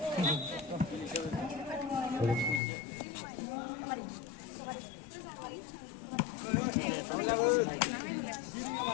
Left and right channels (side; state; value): right; drops out; at 2.6 s